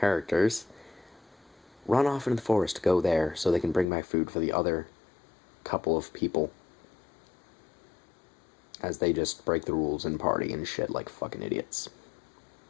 run off into the forest to go there so they can bring back food for the other couple of people. as they just break the rules and party and shit like fucking idiots.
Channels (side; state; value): right; drops out; at 3.9 s